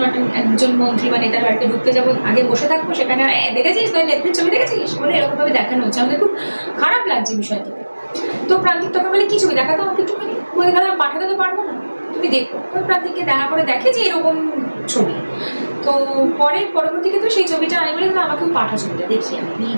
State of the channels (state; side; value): inverted; both; correlation -1.00